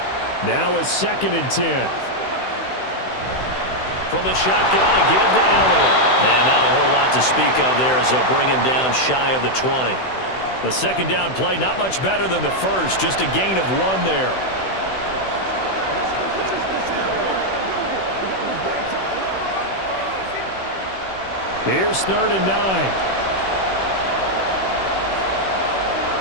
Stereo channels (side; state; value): right; late; 16 ms